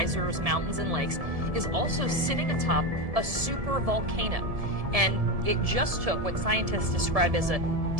mountains, and lakes, is also sitting atop a supervolcano. And it just took what scientists describe as a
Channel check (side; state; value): left; late; 1.7 ms